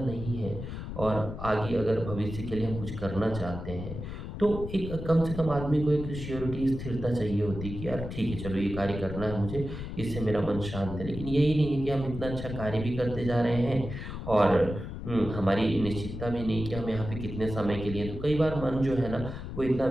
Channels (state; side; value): noise; left; rumble, 8 dB below the sound